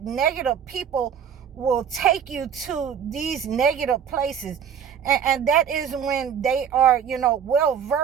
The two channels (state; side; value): quieter; left; 8.0 dB